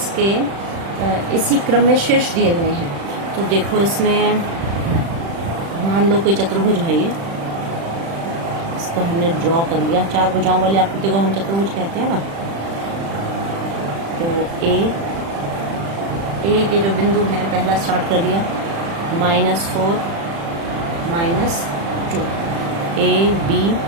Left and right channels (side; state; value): left; late; 36 ms